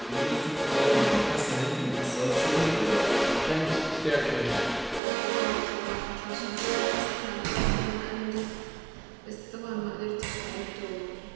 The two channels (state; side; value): drops out; left; at 5.0 s